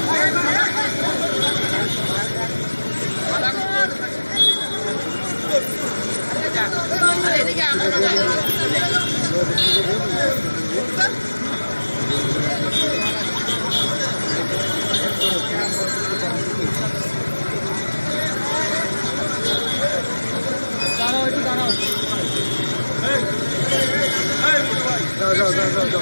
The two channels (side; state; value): both; inverted; correlation -1.00